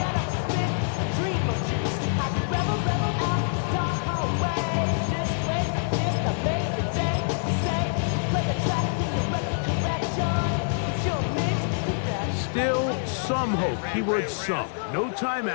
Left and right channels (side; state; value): right; silent; digital silence